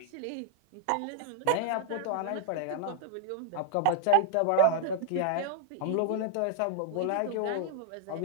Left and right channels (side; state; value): both; different; correlation -0.01